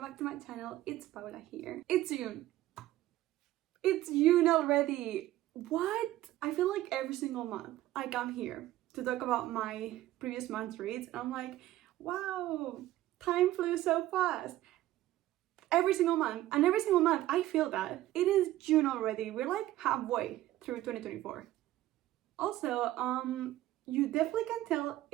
back to my channel. It's Paula here. It's June. It's June already. What? I feel like every single month I come here to talk about my previous month's reads and I'm like, wow, time flew so fast. Every single month, and every single month I feel that. It is June already. We're like halfway through 2024. Also, you definitely can tell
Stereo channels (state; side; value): quieter; left; 15.1 dB